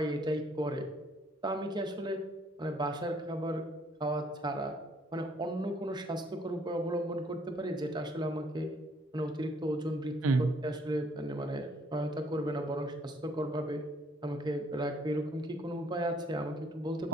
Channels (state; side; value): normal; both; correlation 0.64